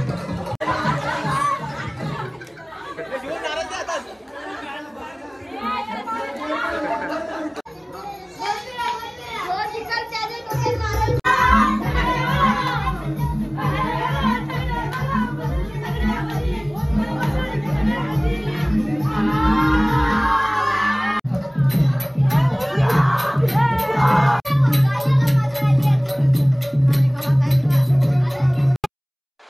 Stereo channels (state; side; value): identical; both; correlation 1.00